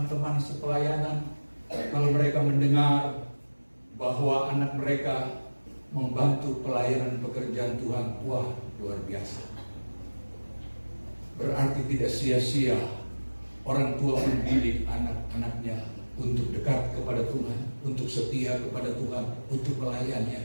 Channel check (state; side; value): inverted; both; correlation -1.00